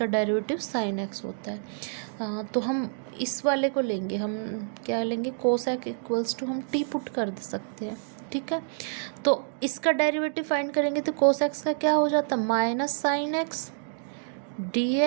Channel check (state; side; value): silent; left; digital silence